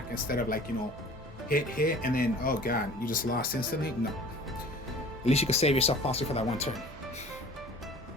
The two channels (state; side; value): normal; both; correlation 0.45